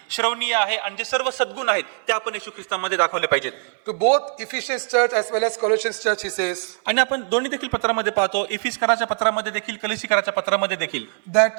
श्रवणीय आहे आणि जे सर्व सद्गुण आहेत ते आपण येशू ख्रिस्तामध्ये दाखवले पाहिजेत. To both Ephesians church as well as Colossians church, he says आणि आपण दोन्ही देखील पत्रामध्ये पाहतो, इफिसकराच्या पत्रामध्ये देखील, कलिसिकराच्या पत्रामध्ये देखील,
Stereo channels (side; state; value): left; silent; digital silence